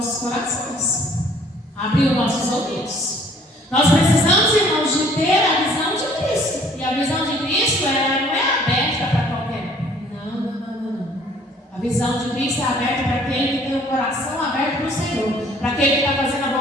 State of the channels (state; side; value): normal; both; correlation 0.57